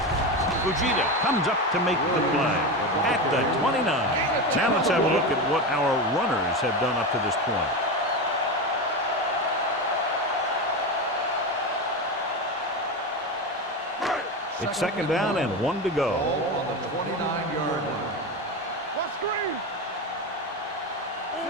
Fujita comes up to make the play at the 29. Now let's have a look at what our runners have done up to this point. It's second down and 1 to go. On the 29-yard line. What screen?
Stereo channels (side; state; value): both; normal; correlation 0.19